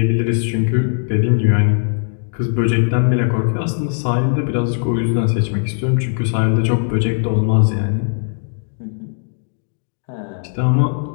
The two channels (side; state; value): right; silent; digital silence